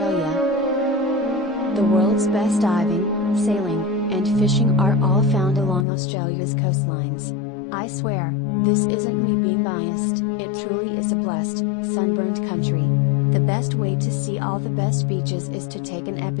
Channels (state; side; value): drops out; right; at 5.9 s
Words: The world's best diving, sailing, and fishing are all found along Australia's coastlines. I swear, this isn't me being biased, it truly is a blessed, sunburned country. The best way to see all the best beaches is to take an